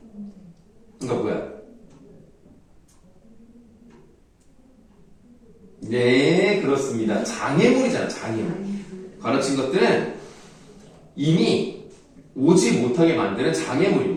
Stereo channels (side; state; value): both; identical; correlation 1.00